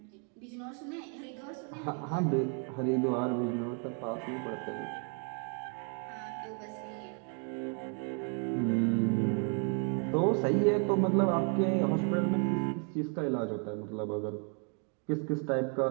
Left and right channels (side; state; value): left; quieter; 38.7 dB